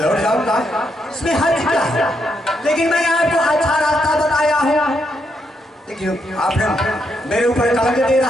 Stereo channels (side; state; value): both; normal; correlation 0.78